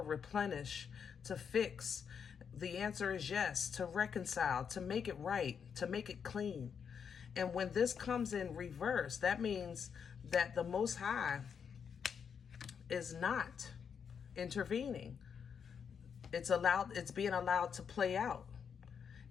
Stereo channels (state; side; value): quieter; right; 7.0 dB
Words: replenish, to fix. The answer is yes, to reconcile, to make it right, to make it clean. And when this comes in reverse, that means that the Most High is not intervening. It's being allowed to play out.